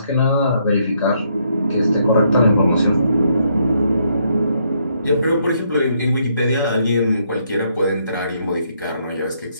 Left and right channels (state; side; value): inverted; both; correlation -0.73